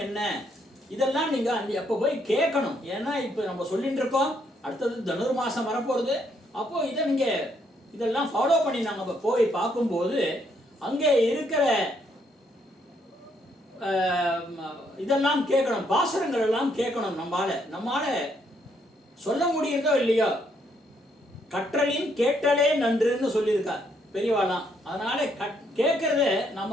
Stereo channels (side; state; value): both; normal; correlation 0.72